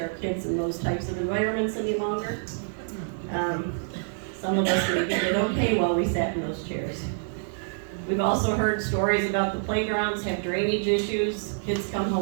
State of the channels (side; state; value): left; silent; digital silence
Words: kids in those types of environments any longer. Some of us maybe did okay while we sat in those chairs. We've also heard stories about the playgrounds have drainage issues, kids come